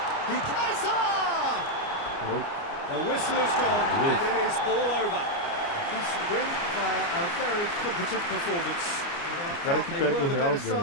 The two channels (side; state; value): right; late; 29 ms